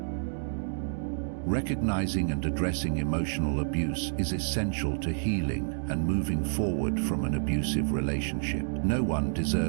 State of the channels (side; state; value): left; silent; digital silence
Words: Recognizing and addressing emotional abuse is essential to healing and moving forward from an abusive relationship. No one